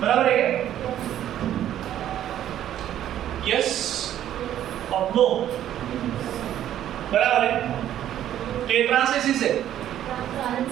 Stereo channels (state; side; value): quieter; left; 11.5 dB